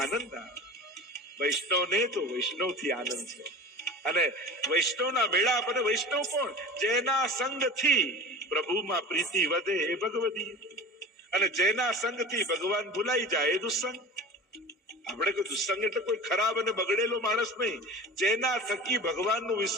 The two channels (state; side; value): normal; both; correlation 0.36